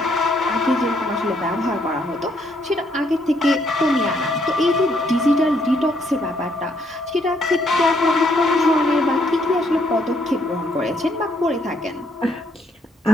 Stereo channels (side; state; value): both; normal; correlation 0.71